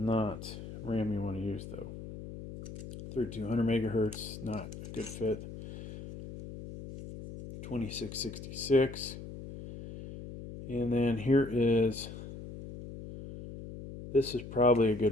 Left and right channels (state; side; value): noise; left; hum, 11 dB below the sound